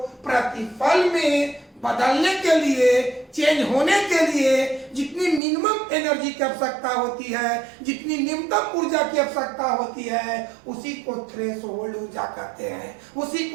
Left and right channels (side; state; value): left; drops out; at 5.4 s